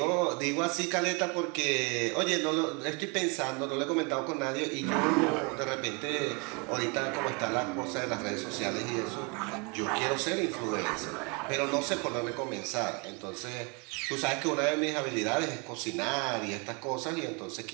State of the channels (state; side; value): quieter; left; 31.5 dB